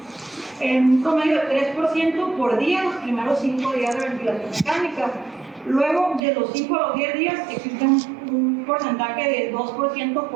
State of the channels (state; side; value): drops out; left; at 6.2 s